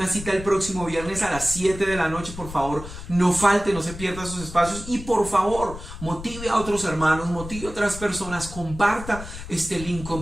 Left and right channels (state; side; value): noise; left; rumble, 12 dB below the sound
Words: cita el próximo viernes a las 7 de la noche. Por favor, no falte, no se pierda esos espacios y por favor, motive a otros hermanos, motive a otras personas, comparta este link,